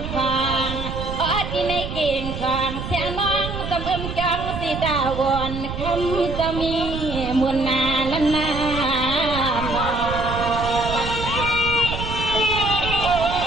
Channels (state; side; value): noise; right; rumble, 6 dB below the sound